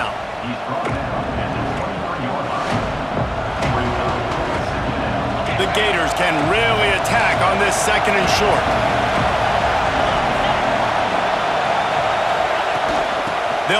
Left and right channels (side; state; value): both; identical; correlation 1.00